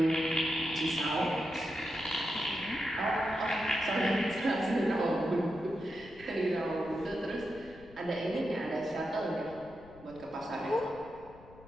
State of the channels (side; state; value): left; noise; rumble, 21 dB below the sound